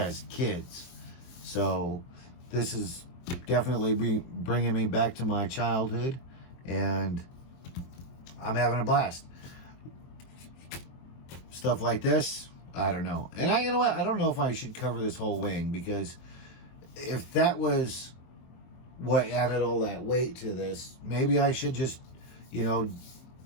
kids. So this is definitely bringing me back to my childhood, and I'm having a blast. Stuff like this, I don't know. And you know what? I don't know if I should cover this whole wing, because if that was what added all that weight to this, maybe I should just, you know,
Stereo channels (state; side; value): late; right; 23 ms